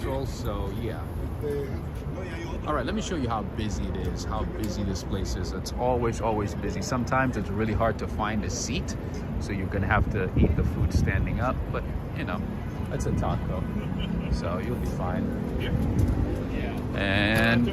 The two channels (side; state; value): both; identical; correlation 1.00